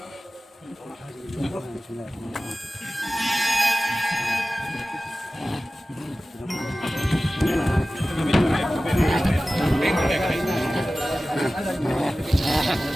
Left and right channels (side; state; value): both; normal; correlation 0.96